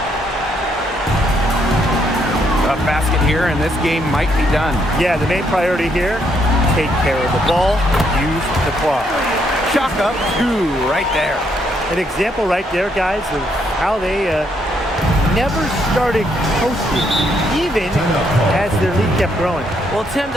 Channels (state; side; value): normal; both; correlation 0.73